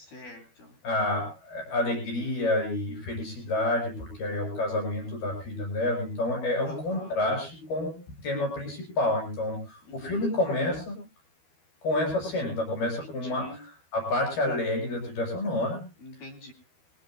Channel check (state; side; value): late; right; 12 ms